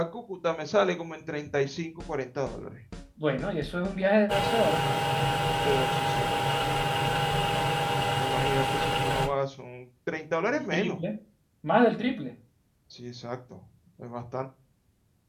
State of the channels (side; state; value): both; identical; correlation 1.00